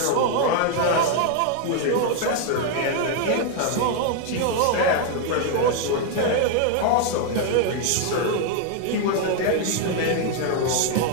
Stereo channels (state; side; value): different; both; correlation 0.00